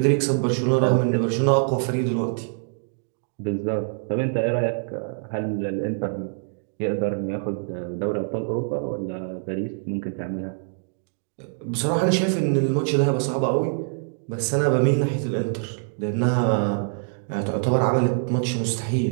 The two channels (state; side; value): silent; left; digital silence